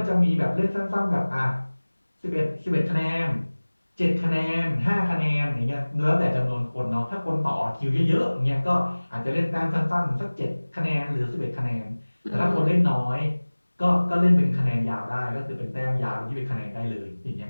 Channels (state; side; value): inverted; both; correlation -1.00